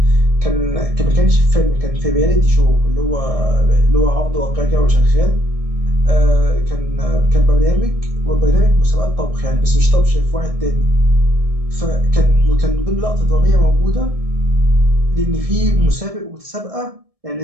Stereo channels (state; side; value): late; left; 1.7 ms